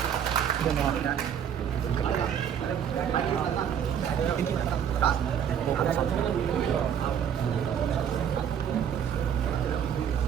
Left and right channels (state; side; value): quieter; left; 8.6 dB